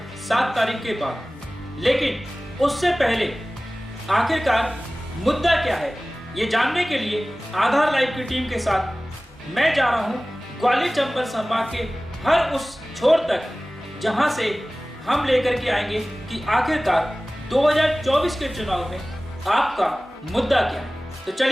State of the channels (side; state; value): both; normal; correlation 0.98